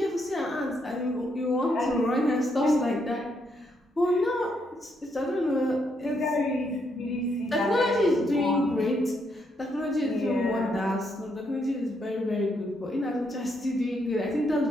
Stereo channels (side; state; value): both; normal; correlation 0.76